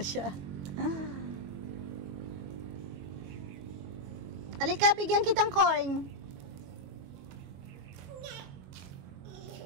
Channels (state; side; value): late; left; 22 ms